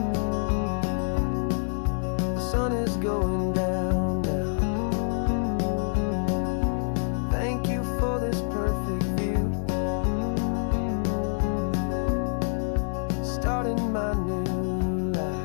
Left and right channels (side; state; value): right; silent; digital silence